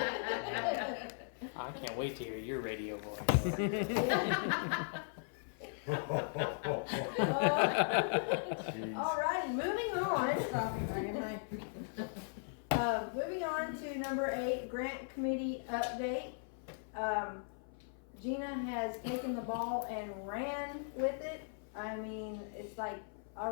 I can't wait to hear your radio voice. Jeez. Alright, moving on. Stop it, Ryan, Moving on to number 8, grant committee update. Gina has taken the ball and ran with it. I mean, it's like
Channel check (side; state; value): right; silent; 52 dB below the other